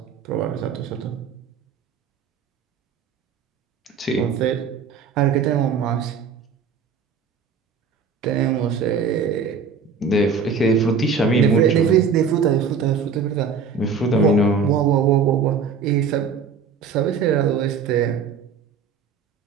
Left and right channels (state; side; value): quieter; left; 5.7 dB